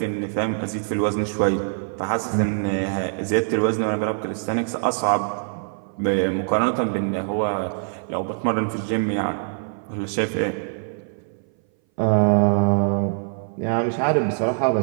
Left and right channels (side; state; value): left; silent; 59 dB below the other